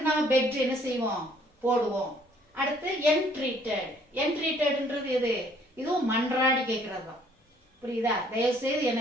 நம்ம பெக்டு என்ன செய்வோம், போடுவோம். அடுத்து என்ட்ரீட்டட். என்ட்ரீட்டட்ன்றது எது, இதுவும் மன்றாடி கேட்கறது தான். புரியுதா? தயவு செய்து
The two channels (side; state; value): both; normal; correlation 0.61